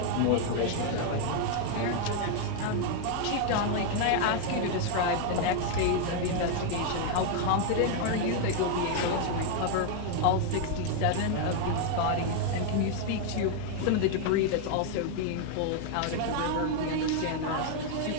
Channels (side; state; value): both; different; correlation 0.00